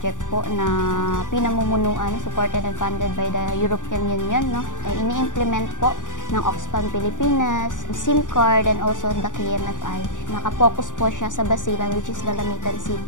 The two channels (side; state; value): right; late; 0.87 ms